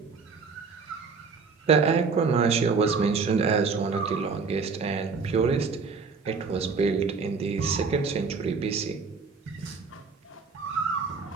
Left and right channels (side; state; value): left; quieter; 5.0 dB